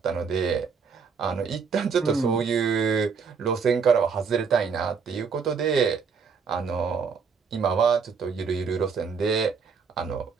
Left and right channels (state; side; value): quieter; left; 5.7 dB